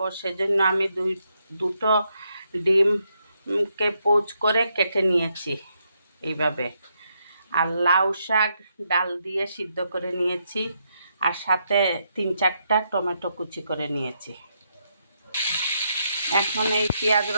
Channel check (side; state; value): both; inverted; correlation -0.78